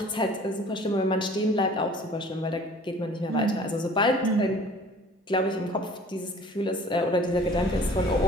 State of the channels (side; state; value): both; normal; correlation 0.49